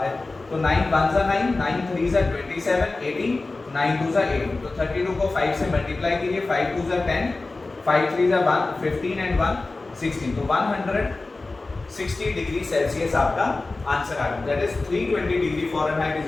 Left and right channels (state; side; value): quieter; right; 3.4 dB